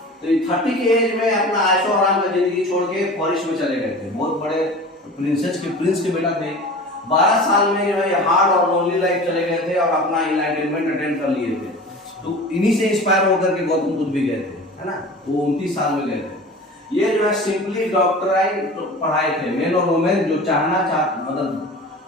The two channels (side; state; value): both; normal; correlation 0.37